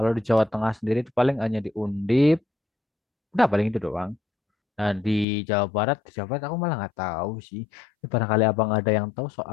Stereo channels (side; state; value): right; drops out; at 5.2 s